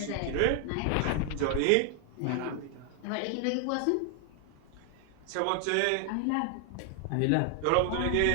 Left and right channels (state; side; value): different; both; correlation 0.00